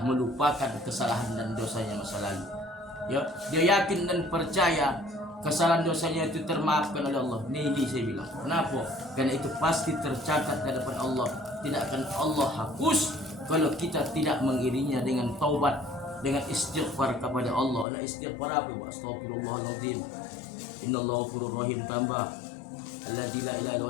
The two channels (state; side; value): drops out; right; at 17.9 s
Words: melupakan kesalahan dan dosanya masa lalu. Ya, dia yakin dan percaya kesalahan dosanya itu termaafkan oleh Allah. Ini saya bilang. Kenapa? Karena itu pasti tercatat di hadapan Allah. Tidak akan Allah hapus kalau kita tidak mengiringinya dengan taubat, dengan istighfar kepada Allah. Nah, istighfar apa? Astagfirullahaladzim. Innallaha ghafurur rahim, tambah alladzi la ilaha illa